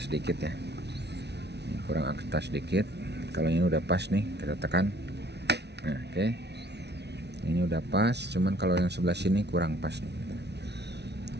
sedikit ya, kurang atas sedikit. Kalau ini udah pas nih, kita tekan. Nah, oke. Ini udah pas, cuman kalau yang sebelah sini kurang pas nih,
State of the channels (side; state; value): left; late; 0.49 ms